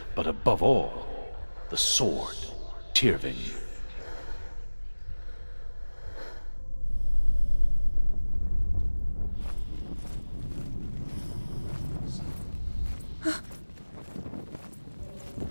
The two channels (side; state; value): both; inverted; correlation -1.00